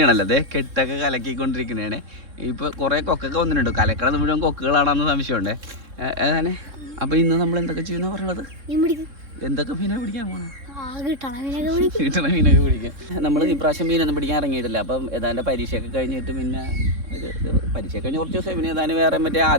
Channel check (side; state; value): left; late; 3.6 ms